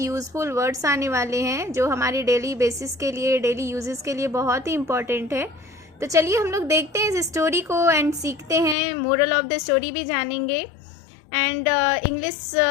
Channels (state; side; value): drops out; right; at 8.8 s